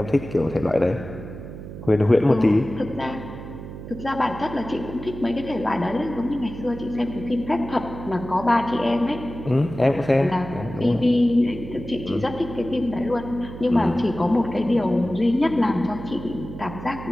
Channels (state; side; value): noise; right; hum, 11 dB below the sound